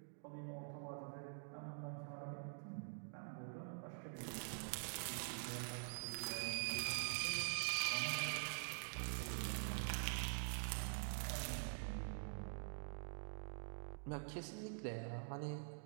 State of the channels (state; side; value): silent; left; digital silence